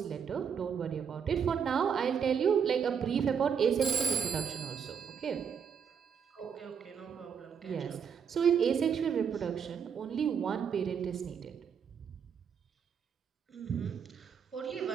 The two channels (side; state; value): left; quieter; 7.2 dB